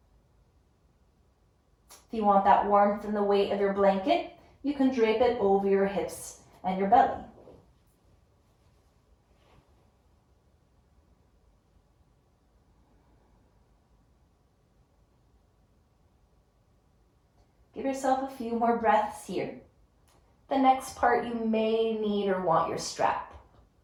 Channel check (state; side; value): identical; both; correlation 1.00